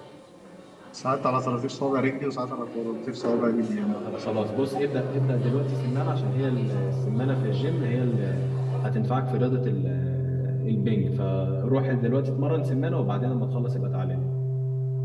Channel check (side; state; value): both; identical; correlation 1.00